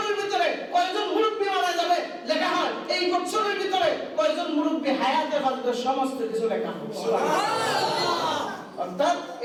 ভিতরে কয়জন মুরব্বী মারা যাবে লেখা হয়। এই বছরের ভিতরে কয়জন মুরব্বী হায়াতে বাঁচবে, সমস্ত কিছু লেখা হয়। সুবহানাল্লাহ। অর্থাৎ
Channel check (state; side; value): identical; both; correlation 1.00